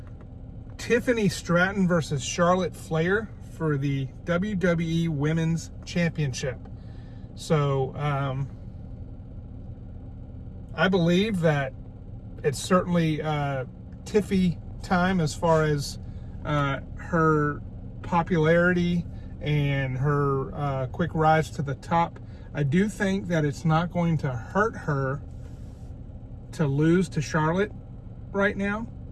Tiffany Stratton versus Charlotte Flair for the WWE Women's Championship. So I believe that it's certainly Tiffy time as far as her popularity and her quick rise to the top. I do think that it's not going to hurt her to lose to Charlotte right now.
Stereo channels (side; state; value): both; identical; correlation 1.00